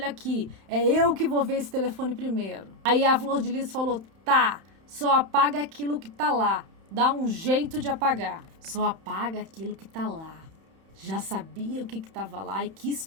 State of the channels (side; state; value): left; late; 31 ms